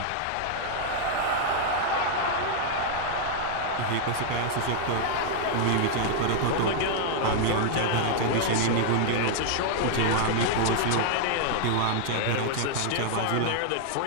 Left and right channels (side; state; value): both; different; correlation -0.01